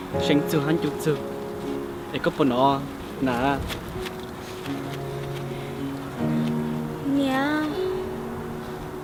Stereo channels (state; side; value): identical; both; correlation 1.00